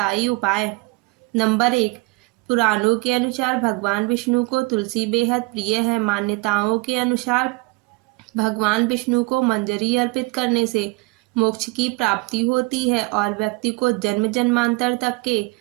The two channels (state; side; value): quieter; left; 25.9 dB